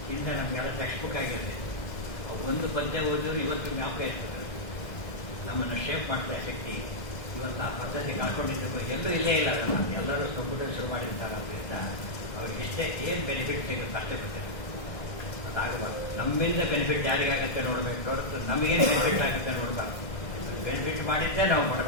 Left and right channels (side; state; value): right; late; 1.6 ms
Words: ಹಿಂದೆ ನಮಗೆಲ್ಲ ಟೆಕ್ಸ್ಟ್ ಬುಕ್ ಆಗಿದೆ. ಅವ್ರು ಒಂದು ಪದ್ಯ ಓದಿದ್ರು ಇವತ್ತು ಜ್ಞಾಪಕ ಇರ್ತದೆ. ನಮ್ಮನ್ನು ಶೇಪ್ ಮಾಡ್ತಾ ಶಕ್ತಿ ಇವತ್ತು ಆ ಪದ್ಧತಿ ಕಳ್ಕೊಂಡಿದ್ದು ಎಲ್ಲರೂ ಇಲ್ಲೇ ಇಲ್ಲ. ಎಲ್ಲರೂ ಕಂಪ್ಯೂಟರ್ ಶುರು ಮಾಡಿರ್ತಾರೆ. ಅದರಿಂದ ಅವ್ರಿಗೆ ಇಷ್ಟೇ ಏನು ಬೆನಿಫಿಟ್ ಸಿಗುತ್ತೆ ಅಷ್ಟೇ ಗೊತ್ತಿದೆ. ಅದಾಗಬಾರ್ದು. ನಮ್ಮಿಂದ ಬೆನಿಫಿಟ್ ಯಾರಿಗಾಗುತ್ತೆ ನೋಡಬೇಕು ಹೊರತು ನಮಗೇನು ಬೆನಿಫಿಟ್ ಆಗುತ್ತೆ ನೋಡಬಾರ್ದು. ಬೆನಿಫಿಟ್ ಮಾಡಿದ್ದೇ ನಾವು